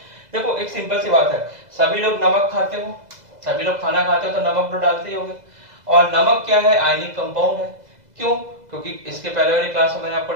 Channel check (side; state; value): left; late; 2.0 ms